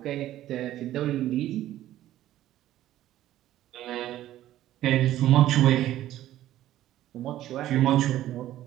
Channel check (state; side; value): quieter; left; 13.6 dB